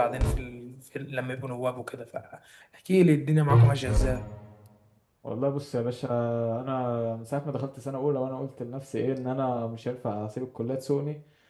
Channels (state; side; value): identical; both; correlation 1.00